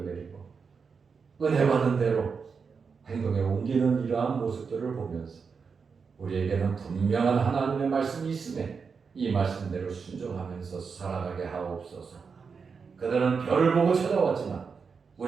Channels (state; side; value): quieter; left; 5.5 dB